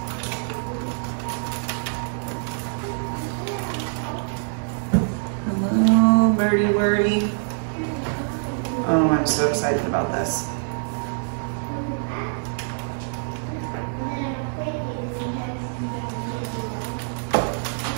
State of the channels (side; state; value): left; silent; 59 dB below the other